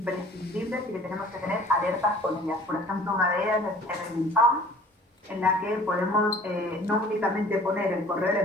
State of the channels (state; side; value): normal; both; correlation 0.49